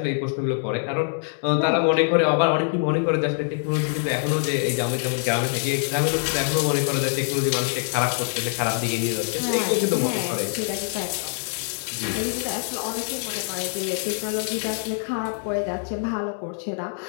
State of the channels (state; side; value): silent; right; digital silence